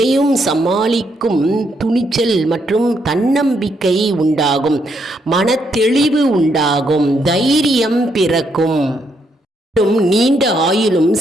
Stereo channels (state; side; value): normal; both; correlation 0.76